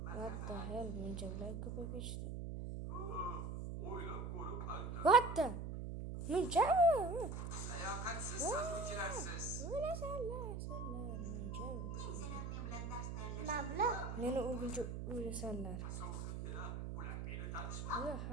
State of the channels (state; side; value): noise; right; hum, 4 dB below the sound